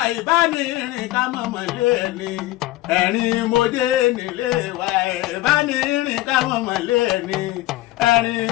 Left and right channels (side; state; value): right; quieter; 17.1 dB